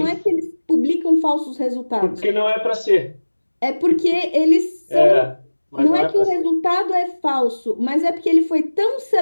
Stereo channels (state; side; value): inverted; both; correlation -1.00